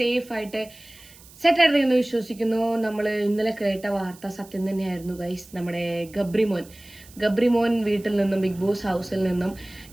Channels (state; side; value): noise; right; hiss, 23 dB below the sound